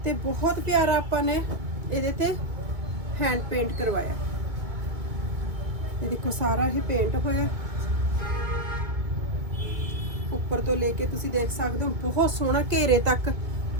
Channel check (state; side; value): late; left; 2.1 ms